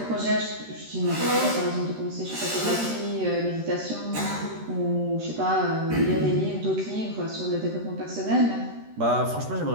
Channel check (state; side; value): late; left; 13 ms